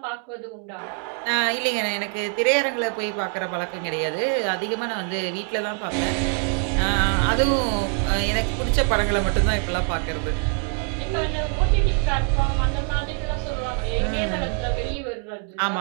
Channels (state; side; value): quieter; left; 39.2 dB